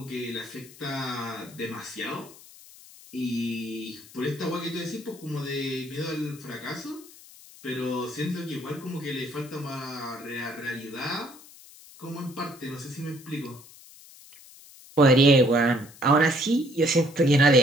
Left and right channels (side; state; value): left; noise; hiss, 21 dB below the sound